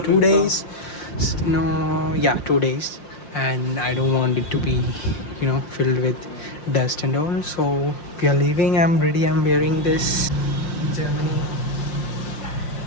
2 days. No, yeah, 2 days, and I don't want it to be, filled with dust and all. So we are leaving. I'm ready. I'm wearing this Germany.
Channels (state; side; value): late; right; 5.6 ms